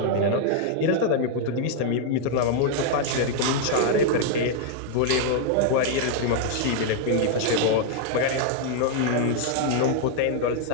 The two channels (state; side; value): different; both; correlation 0.00